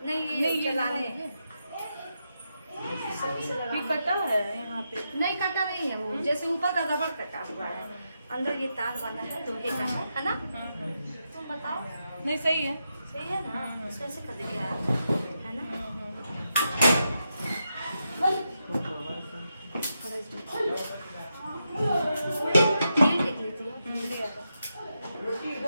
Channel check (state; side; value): inverted; both; correlation -0.85